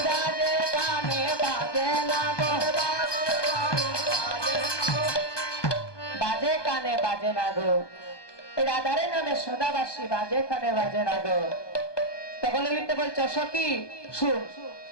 বাজে কানে বাজে না গো, বাজে কানে বাজে না গো, রাধারের নামে সদাবাসী বাজে কানে বাজে না গো। তখন লিখতে বলছো, সখী শুন,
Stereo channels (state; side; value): late; right; 1.2 ms